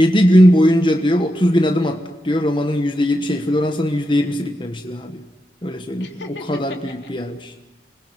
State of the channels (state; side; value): normal; both; correlation 0.86